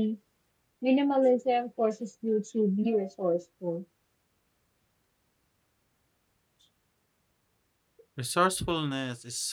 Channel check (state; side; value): identical; both; correlation 1.00